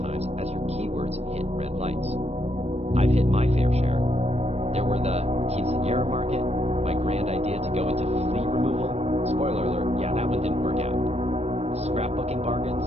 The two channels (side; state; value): left; late; 0.31 ms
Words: times as your keywords hit red lights. I've hit my fair share. There were the quinceañera market, my grand idea to go into flea removal. Spoiler alert, yeah, that one didn't work out. Scrapbooking bargains,